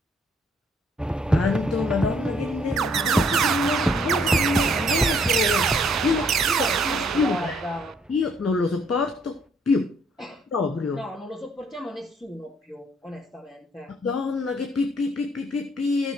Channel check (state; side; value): normal; both; correlation 0.66